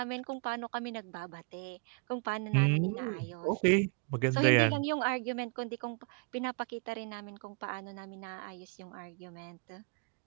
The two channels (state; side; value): quieter; left; 34.6 dB